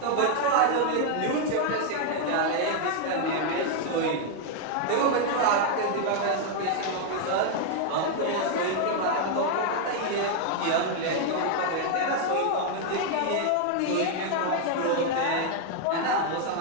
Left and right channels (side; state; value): both; different; correlation 0.00